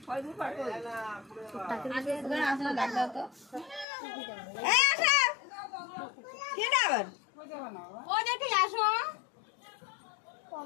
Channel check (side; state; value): right; drops out; at 3.9 s